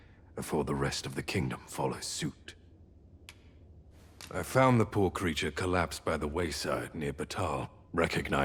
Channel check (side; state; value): both; identical; correlation 1.00